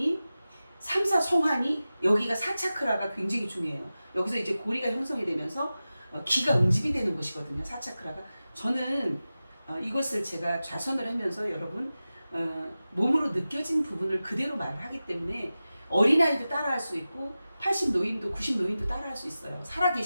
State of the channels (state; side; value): inverted; both; correlation -0.95